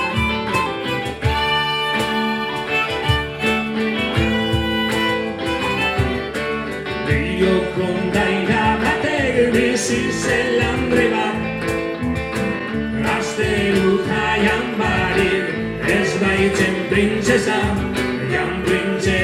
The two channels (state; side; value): identical; both; correlation 1.00